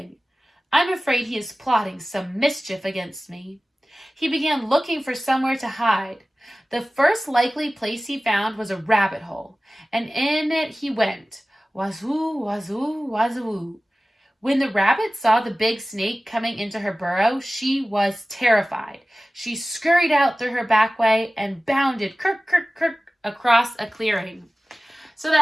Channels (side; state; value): both; normal; correlation 0.97